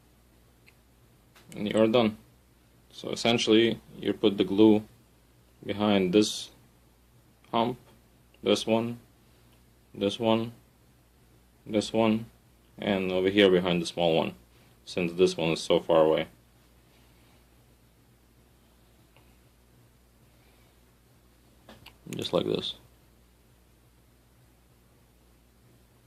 And you're done. So essentially you put the glue behind this hump, this one, this one, this one, and over here behind the small one, since this one is so far away. Just like this.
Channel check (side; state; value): both; identical; correlation 1.00